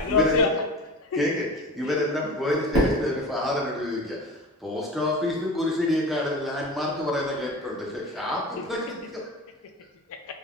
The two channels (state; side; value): normal; both; correlation 0.34